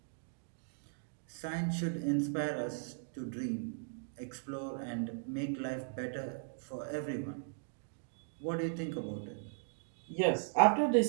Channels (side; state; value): left; silent; digital silence